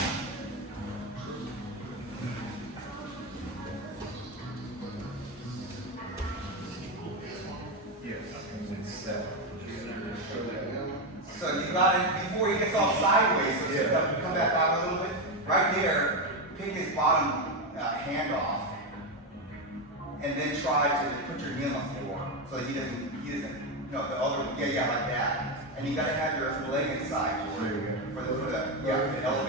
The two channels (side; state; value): both; normal; correlation 0.10